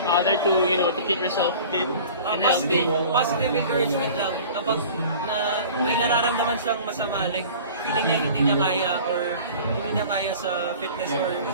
other to, to keep yourself fit and healthy? Positive encouragement lang. Kapag may nararamdaman siyang masama, like feeling niya hindi niya kaya or hindi niya kaya sa fitness or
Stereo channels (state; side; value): inverted; both; correlation -0.43